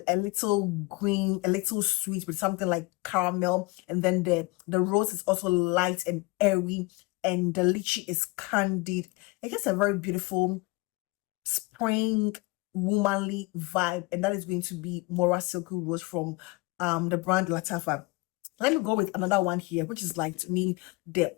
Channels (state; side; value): quieter; right; 24.5 dB